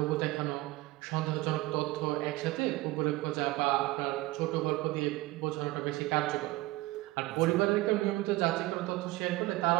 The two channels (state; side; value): quieter; left; 19.1 dB